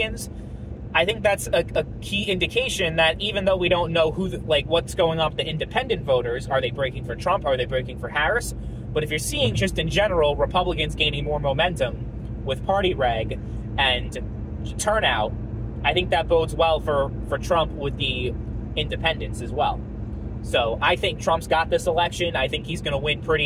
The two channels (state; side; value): identical; both; correlation 1.00